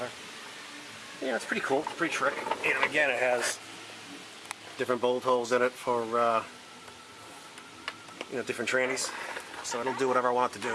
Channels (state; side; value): identical; both; correlation 1.00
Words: It's pretty cool, pretty trick. And again, it has different bolt holes in it for, different trannies. So it'll do whatever I want it to do.